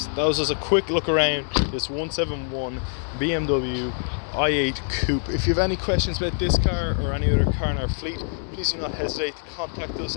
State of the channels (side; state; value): right; silent; 62 dB below the other